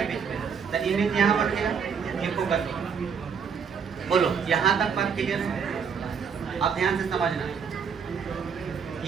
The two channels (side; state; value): left; quieter; 6.6 dB